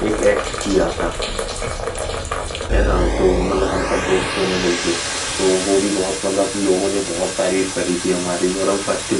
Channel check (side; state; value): both; identical; correlation 1.00